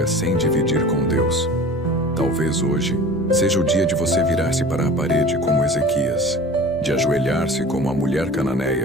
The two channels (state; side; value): normal; both; correlation 0.41